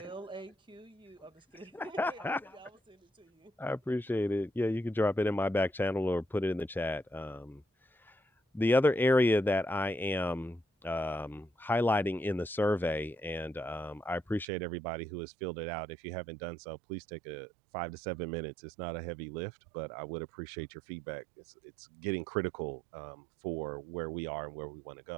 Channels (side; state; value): left; drops out; at 14.5 s